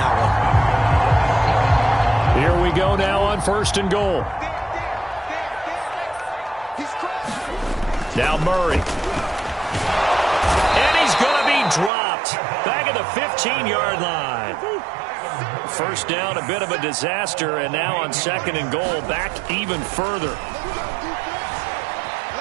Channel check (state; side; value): drops out; left; at 11.9 s